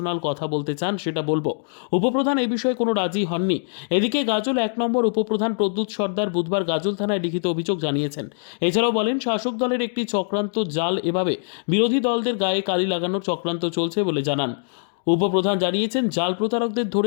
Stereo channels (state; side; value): silent; right; digital silence